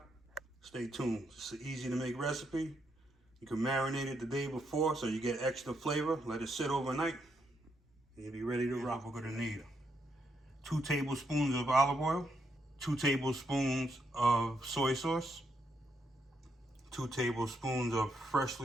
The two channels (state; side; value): normal; both; correlation 0.78